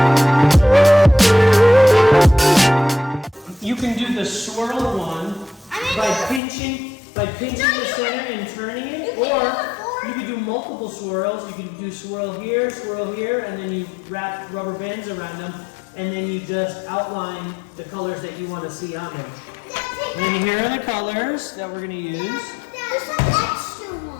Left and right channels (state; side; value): drops out; right; at 6.4 s